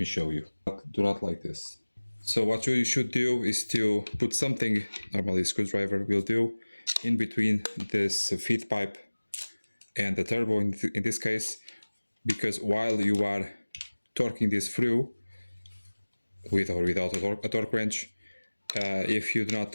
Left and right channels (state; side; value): inverted; both; correlation -1.00